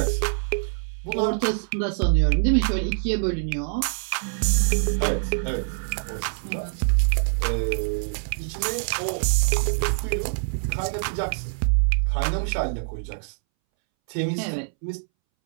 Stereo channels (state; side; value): silent; left; 62 dB below the other